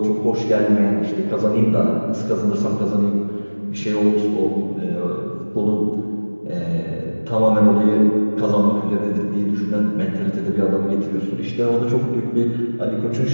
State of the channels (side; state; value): both; inverted; correlation -1.00